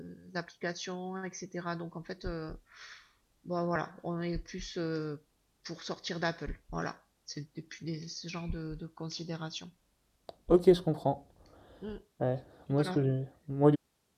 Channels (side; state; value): both; identical; correlation 1.00